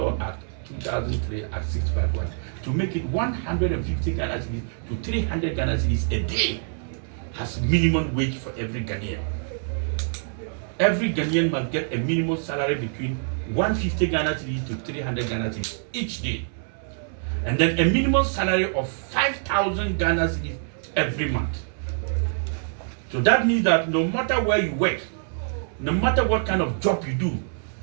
act 2003 at 651 to make it 150 Ghana cedis to 300 Ghana cedis a day as minimum wage for every Ghanaian. Every Ghanaian must get a minimum salary between 150 Ghana cedis to 300 Ghana cedis each day. And then a minimum salary of 5,000 Ghana cedis every month. So that means that no matter where you work, no matter what kind of job you do,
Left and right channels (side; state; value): left; silent; 62 dB below the other